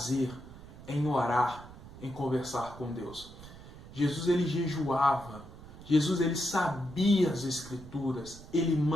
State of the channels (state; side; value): noise; right; rumble, 17 dB below the sound